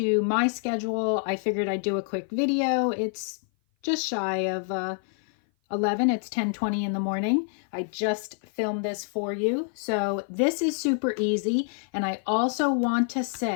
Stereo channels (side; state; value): right; silent; 56 dB below the other